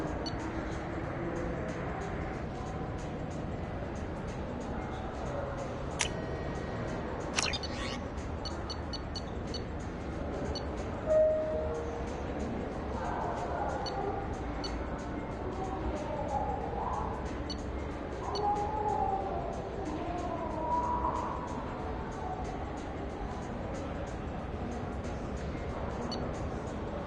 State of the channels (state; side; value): identical; both; correlation 1.00